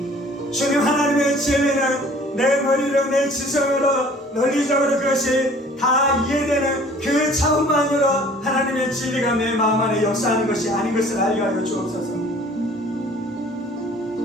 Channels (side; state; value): both; normal; correlation 0.51